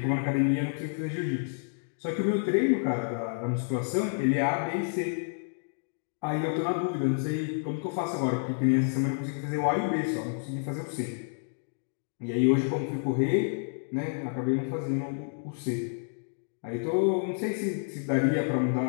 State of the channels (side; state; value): right; silent; digital silence